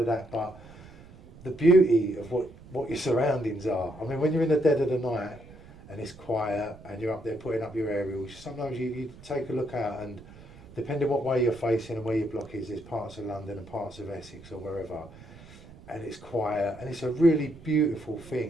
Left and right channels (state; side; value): noise; right; rumble, 20 dB below the sound